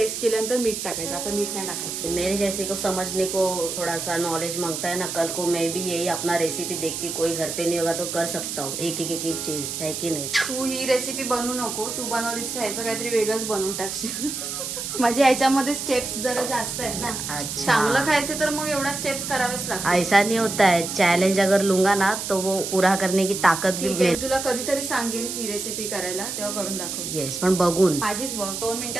केल्यानंतर मीठ टाकायचं. आता मीठ नाही टाकायचं. मेरे जैसे को समझने को थोड़ा सा नॉलेज मांगता है ना, कल को मैं भी यही अपना रेसिपी देख के कोई घर पे नहीं होगा तो कर सकता हूँ. एक चीज है की नाही. तू ही रेसिपी बनवू नको. तू बनवलीस ह्याचं काहीतरी वेगळंच बनवून टाकशील. म्हणजे ह्याच्यामध्ये स्टेप्स जरा जास्त आहेत ना. चांगलं खायचं तर मग एवढा स्टेप्स करावेच लागतात. ऐसा नहीं होता है. चैलेंज अगर लूंगा ना तो वो पूरा करने की ताकत भी मिळेल. तुला कधीतरी सांगेन ही रेसिपी करायला, तेव्हा करून दाखव. येस, पण बघून. माझीच बघ. 2 मिनिटं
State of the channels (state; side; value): noise; right; hiss, 5 dB below the sound